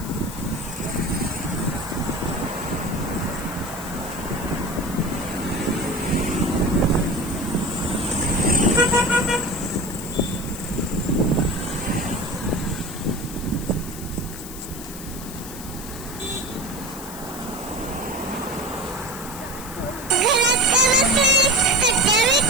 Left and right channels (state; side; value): noise; left; hiss, 13 dB below the sound